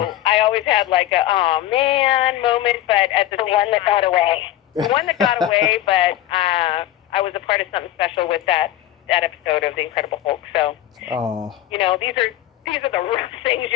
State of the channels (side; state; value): right; quieter; 13.5 dB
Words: I always had like a oh man moment, but at the one that got away. The one that got away, but I was a part of something special with that episode of The Incredible Hulk. So these are the rough things